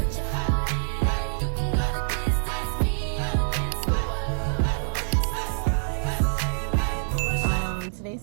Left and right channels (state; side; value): silent; left; digital silence